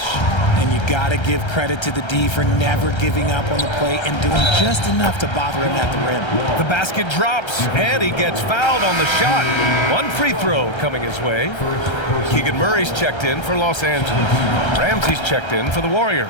And you got to give credit to the D for never giving up on the play and doing just enough to bother him at the rim. The basket drops, and he gets fouled on the shot. One free throw coming his way. Keegan Murray's checked in for Los Angeles. Ramsey's checked in for the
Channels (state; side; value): late; right; 1.3 ms